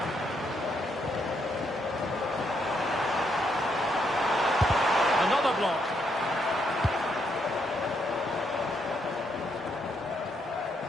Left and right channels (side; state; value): both; normal; correlation 0.76